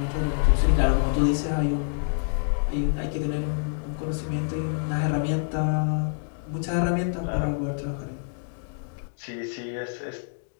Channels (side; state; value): right; silent; digital silence